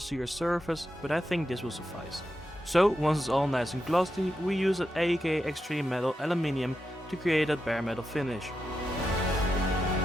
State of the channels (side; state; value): both; normal; correlation 0.88